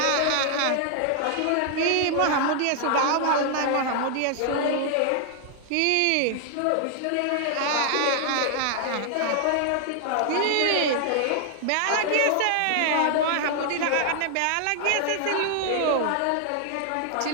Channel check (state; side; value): different; both; correlation 0.00